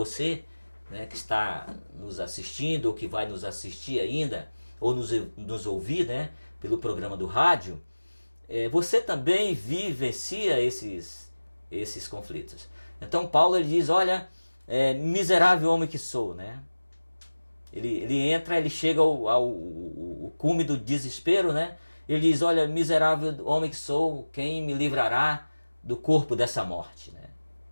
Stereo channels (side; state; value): both; inverted; correlation -1.00